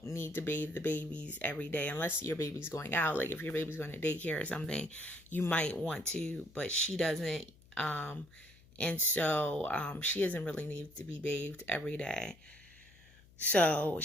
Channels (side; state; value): left; noise; hum, 26 dB below the sound